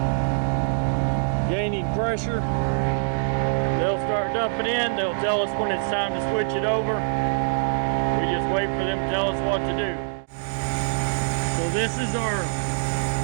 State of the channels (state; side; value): silent; left; digital silence